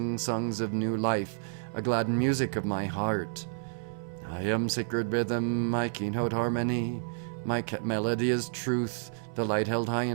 songs of new life, a glad music of my heart. I am sacred rhythm, my keynote harmony, my melody is truth, the light held high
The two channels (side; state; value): left; silent; 58 dB below the other